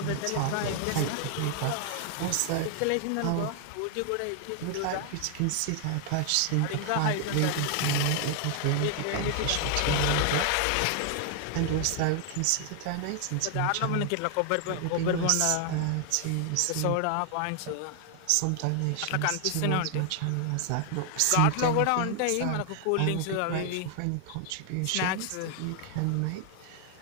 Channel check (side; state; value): both; different; correlation 0.00